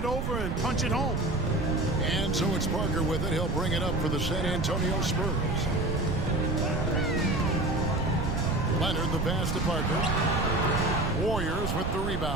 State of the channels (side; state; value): right; noise; rumble, 1 dB below the sound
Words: over and punch it home. And so it's Parker with it. He'll bring it up for the San Antonio Spurs. Leonard the pass to Parker. Warriors with the